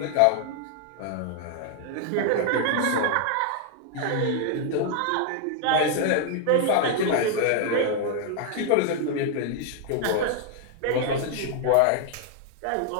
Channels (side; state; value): both; different; correlation 0.00